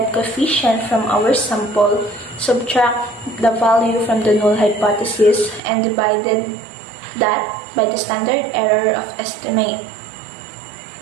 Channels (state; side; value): drops out; left; at 5.6 s